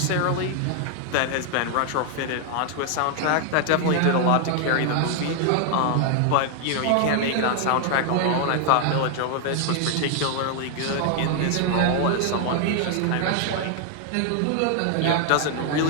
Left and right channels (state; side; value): different; both; correlation 0.00